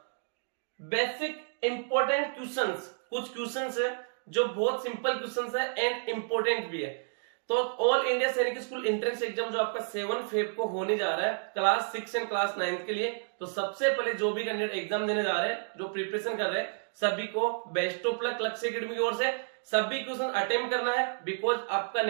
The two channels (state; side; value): silent; left; digital silence